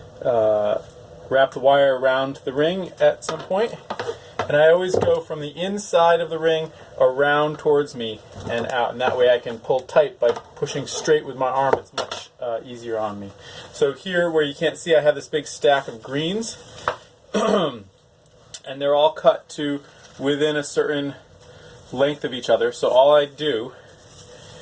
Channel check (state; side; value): identical; both; correlation 1.00